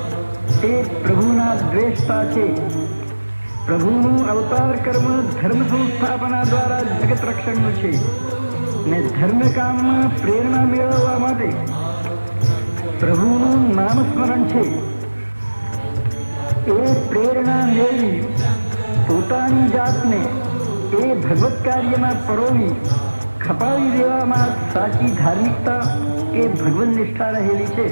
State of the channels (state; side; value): inverted; both; correlation -1.00